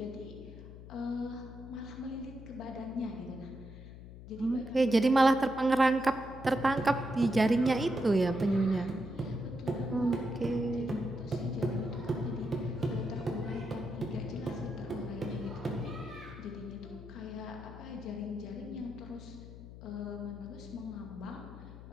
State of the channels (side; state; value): left; noise; hum, 14 dB below the sound